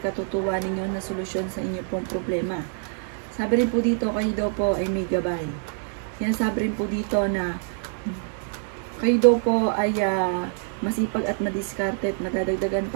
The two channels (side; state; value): left; silent; 56 dB below the other